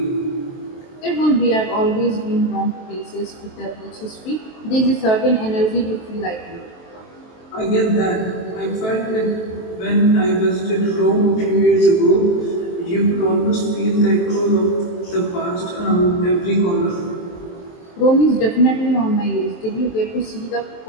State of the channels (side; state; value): right; late; 23 ms